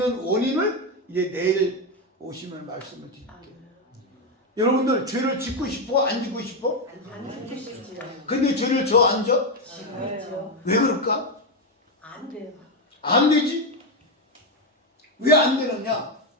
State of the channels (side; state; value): both; normal; correlation 0.08